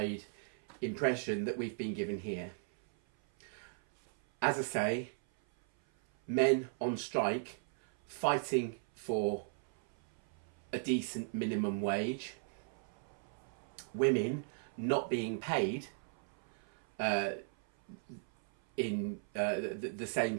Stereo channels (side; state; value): left; silent; 53 dB below the other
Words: impression that we've been given here. As I say, men on strike, fighting for a decent minimum wage, women not being paid in the same